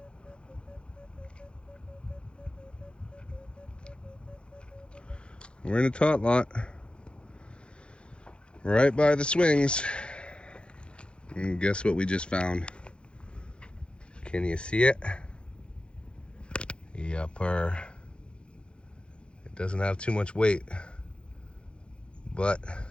We're in a tot lot, right by the swings. And guess what we just found? Can you see it? Yupper. It doesn't have too much weight, but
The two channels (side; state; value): right; late; 0.056 ms